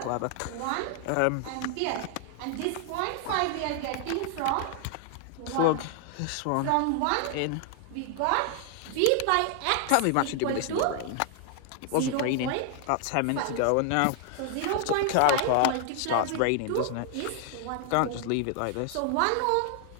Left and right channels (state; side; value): different; both; correlation 0.00